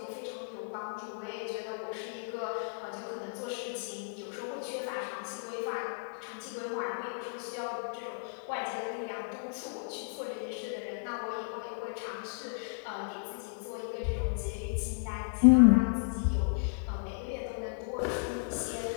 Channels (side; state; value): right; silent; 55 dB below the other